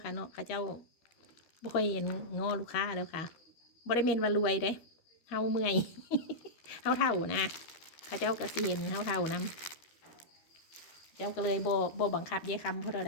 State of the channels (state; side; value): late; right; 13 ms